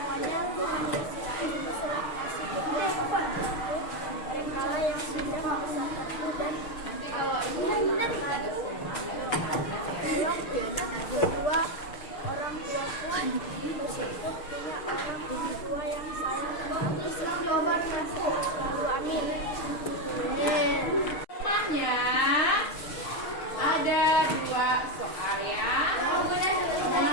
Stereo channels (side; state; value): right; late; 6.5 ms